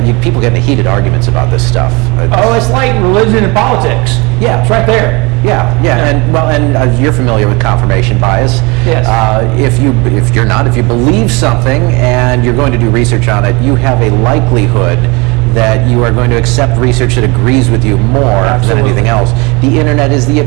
People get into heated arguments about this stuff. It's like religion and politics. Yeah, it's right there. Yeah. And you're familiar with confirmation bias. Yes. If you believe something and you're going to do research on it, you have a likelihood that you are going to accept research that agrees with you more than anything else. The internet is the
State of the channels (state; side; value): quieter; left; 26.3 dB